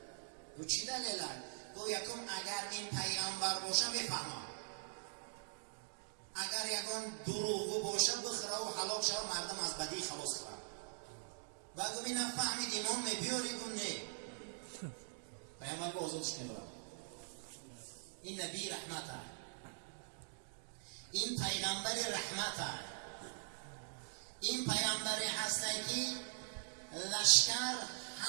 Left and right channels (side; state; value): left; silent; digital silence